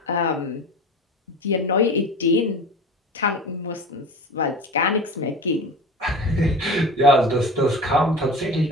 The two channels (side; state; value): both; normal; correlation 0.34